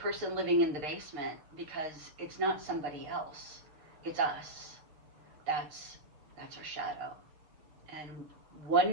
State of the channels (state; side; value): late; left; 6.5 ms